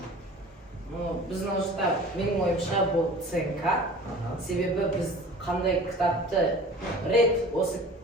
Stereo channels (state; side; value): normal; both; correlation 0.43